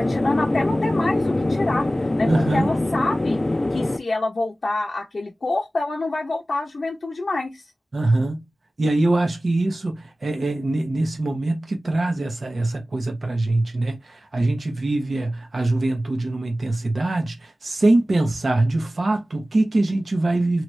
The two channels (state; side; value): normal; both; correlation 0.96